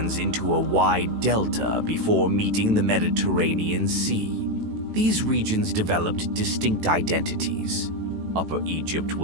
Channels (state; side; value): late; left; 18 ms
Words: into a wide delta before meeting the Mediterranean Sea. These regions developed distinct identities. Upper Egypt